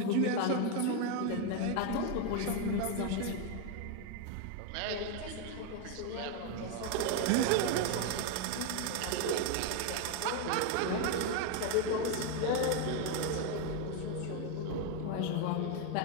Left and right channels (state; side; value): different; both; correlation 0.02